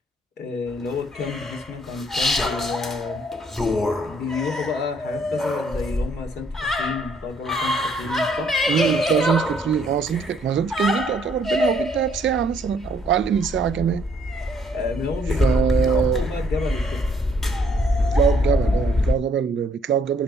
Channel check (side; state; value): both; normal; correlation 0.66